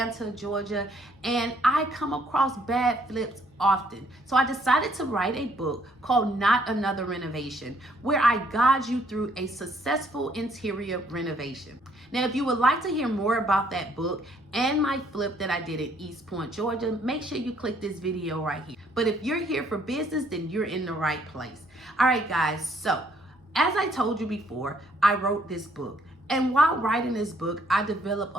Georgia, and I come across bad flips often. So I decided to write a book called Not Another Renovation, where I guide you through a successful interior renovation. Now, if you would like to hear more about that book and my flip that I did in East Point, Georgia, make sure you click this video right here. But if you're here for business, then you're in the right place. All right, guys, so as I told you before, I wrote this book. And while writing this book, I developed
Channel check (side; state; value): both; normal; correlation 0.66